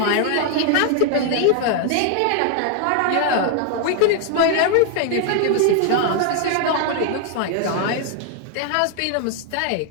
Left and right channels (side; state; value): both; different; correlation 0.00